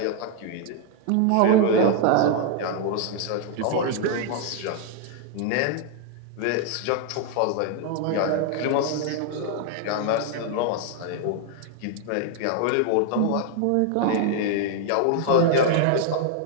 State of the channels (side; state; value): both; different; correlation 0.00